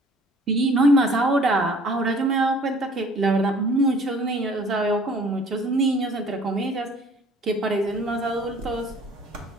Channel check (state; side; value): normal; both; correlation 0.53